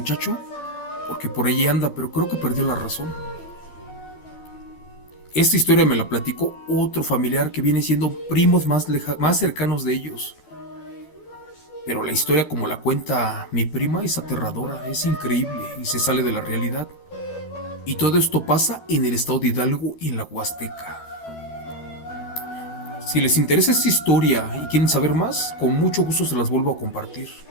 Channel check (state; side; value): late; right; 12 ms